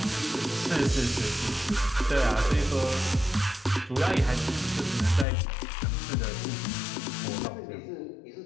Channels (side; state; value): right; drops out; at 5.2 s